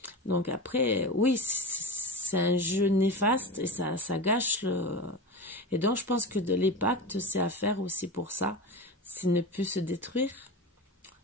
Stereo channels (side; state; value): both; normal; correlation 0.25